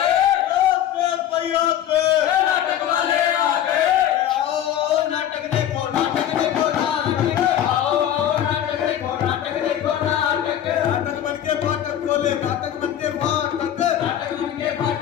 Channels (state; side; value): quieter; right; 10.8 dB